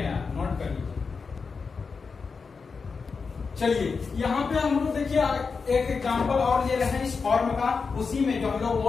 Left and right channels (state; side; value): quieter; right; 5.0 dB